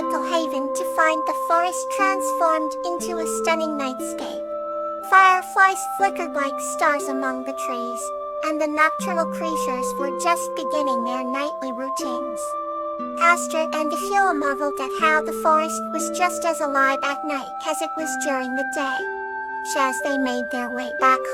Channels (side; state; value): both; identical; correlation 1.00